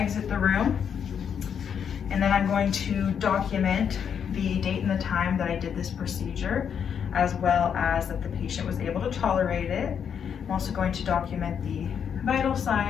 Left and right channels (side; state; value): right; quieter; 7.7 dB